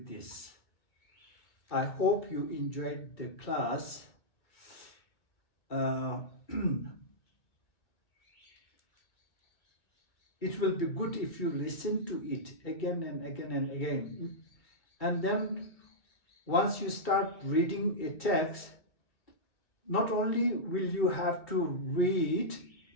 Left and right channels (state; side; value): late; right; 2.1 ms